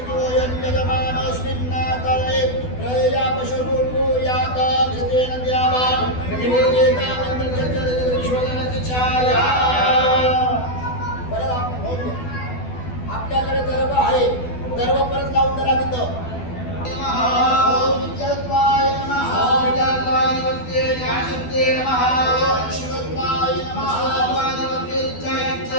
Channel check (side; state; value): right; late; 12 ms